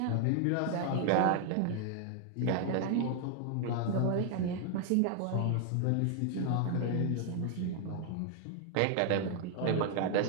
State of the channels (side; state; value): both; different; correlation 0.00